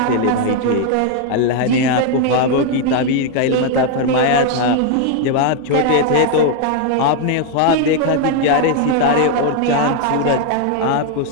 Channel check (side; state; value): both; different; correlation 0.00